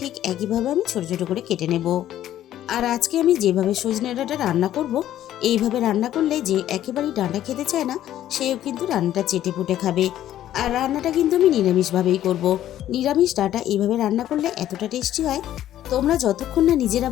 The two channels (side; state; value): right; quieter; 12.3 dB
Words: একইভাবে আমি ছোট ছোট করে কেটে নেব। আর আজকে আমি যেভাবে সজনে ডাঁটা রান্না করব, এইভাবে রান্না করলে যে একেবারেই ডাঁটা খেতে চায় না সেও কিন্তু রান্নাটা চেটে পুটে খাবে। আর রান্নাটা কিন্তু আমি নিরামিষভাবেই করব। নিরামিষ ডাঁটা এইভাবে রান্না করলে এতটা টেস্টি হয়, তোমরা যতক্ষণ না নিজেরা